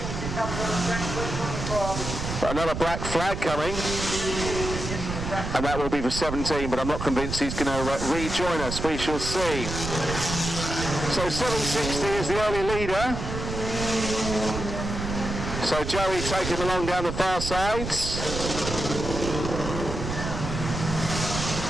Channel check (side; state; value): right; noise; rumble, 5 dB below the sound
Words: Another black flag coming. And that will be for 17, but I'm not convinced he's going to rejoin us. We shall see. So 760 is the early leader. So Joey taking him along down the far sides.